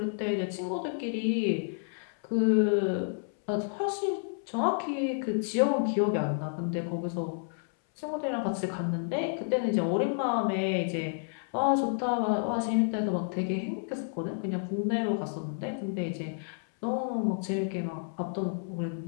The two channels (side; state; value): right; silent; 58 dB below the other